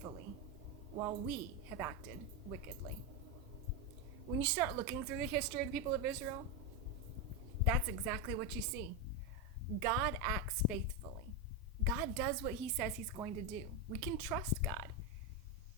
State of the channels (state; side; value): normal; both; correlation 0.08